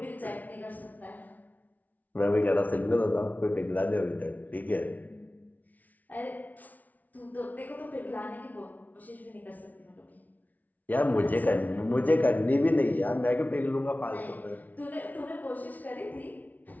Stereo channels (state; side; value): late; right; 0.076 ms